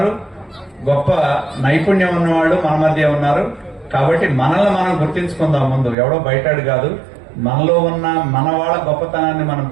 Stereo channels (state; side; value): drops out; left; at 6.0 s